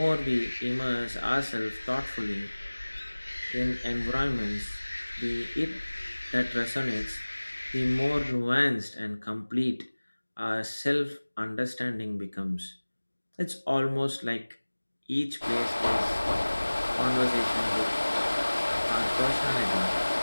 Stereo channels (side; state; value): both; inverted; correlation -1.00